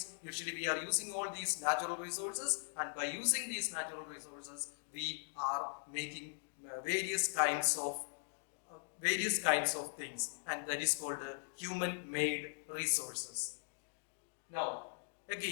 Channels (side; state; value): right; silent; digital silence